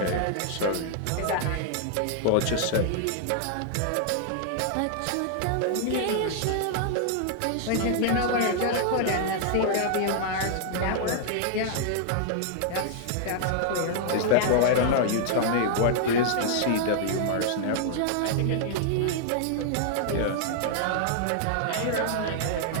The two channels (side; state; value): both; different; correlation -0.01